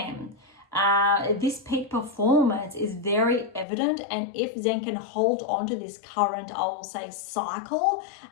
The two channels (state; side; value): drops out; right; at 3.7 s